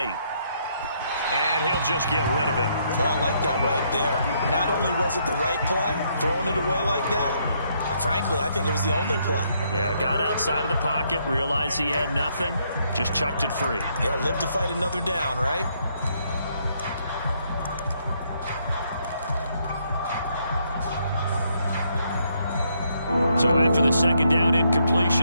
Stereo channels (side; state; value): both; inverted; correlation -0.73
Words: And he'll just get rid of it. Oh, I like that right there. Not only was it the right play, throwing it away like that, frankly, I think it was the only play. Yeah, got outside of the pocket, realized he had nothing, just chucked it free. Yeah, live to fight another down, right? So after the 2nd down